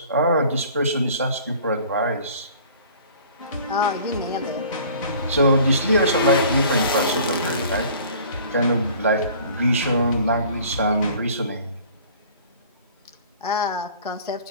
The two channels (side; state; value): both; inverted; correlation -0.49